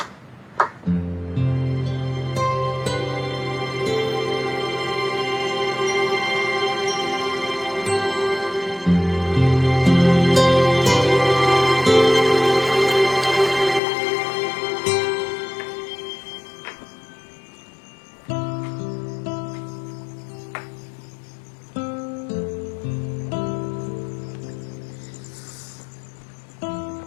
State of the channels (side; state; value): right; drops out; at 13.8 s